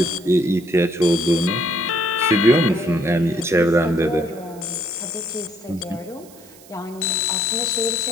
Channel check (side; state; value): right; noise; hiss, 23 dB below the sound